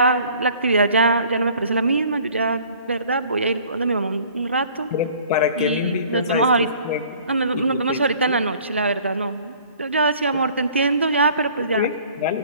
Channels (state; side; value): inverted; both; correlation -0.52